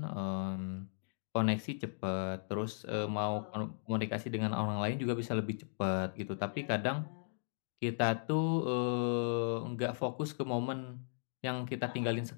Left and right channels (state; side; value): silent; right; digital silence